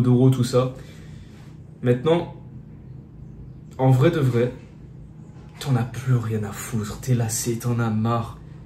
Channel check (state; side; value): identical; both; correlation 1.00